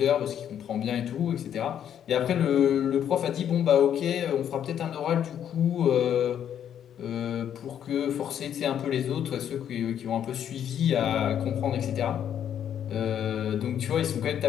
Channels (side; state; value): right; quieter; 9.5 dB